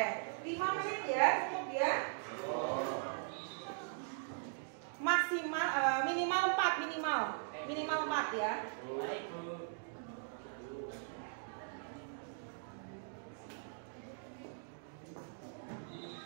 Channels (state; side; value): silent; left; digital silence